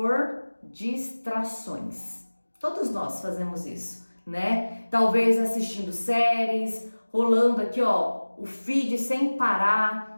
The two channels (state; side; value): inverted; both; correlation -1.00